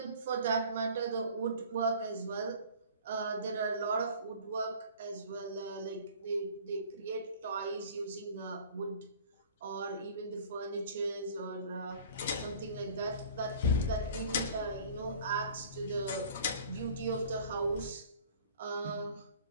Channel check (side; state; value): both; inverted; correlation -0.47